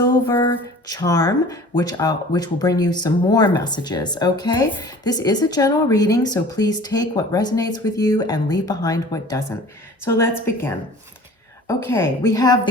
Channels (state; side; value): normal; both; correlation 0.45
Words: charm, which will bring you some more messages, okay? This is a general reading, so please take what resonates with you and leave behind what doesn't. So let's begin. Okay, we have the